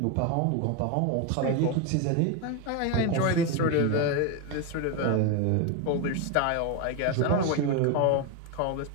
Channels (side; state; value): both; different; correlation 0.02